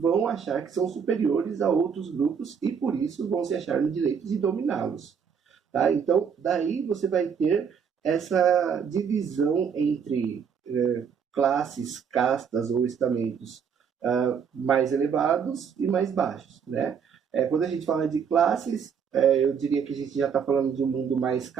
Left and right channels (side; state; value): left; quieter; 6.9 dB